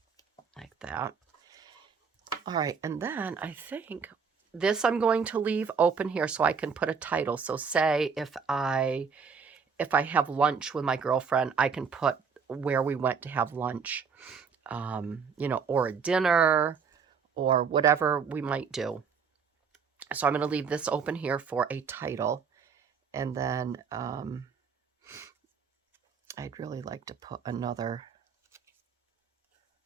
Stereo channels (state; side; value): quieter; left; 6.0 dB